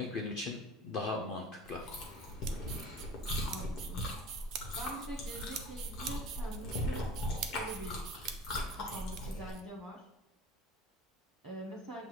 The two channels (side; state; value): both; normal; correlation 0.41